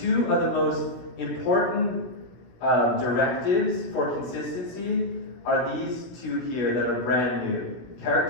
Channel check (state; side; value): late; right; 17 ms